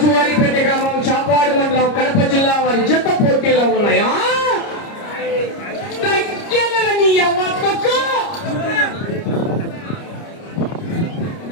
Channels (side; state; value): right; late; 30 ms